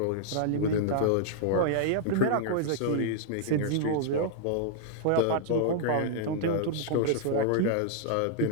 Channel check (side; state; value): both; different; correlation -0.01